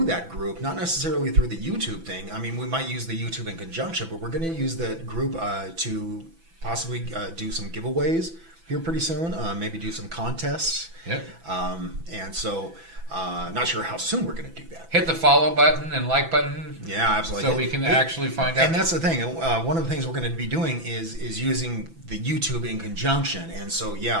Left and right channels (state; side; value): late; left; 6.0 ms